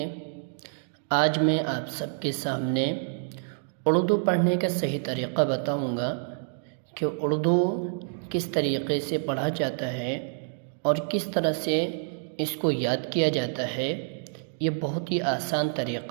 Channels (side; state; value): left; silent; 60 dB below the other